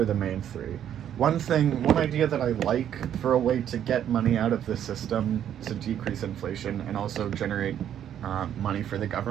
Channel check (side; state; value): left; quieter; 10.1 dB